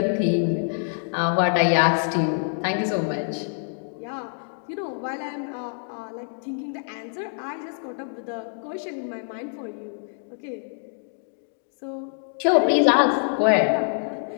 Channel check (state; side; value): silent; right; 61 dB below the other